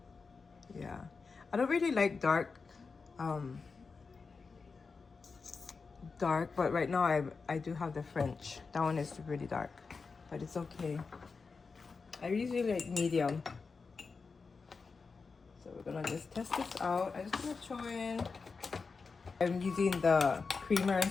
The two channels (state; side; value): quieter; right; 4.7 dB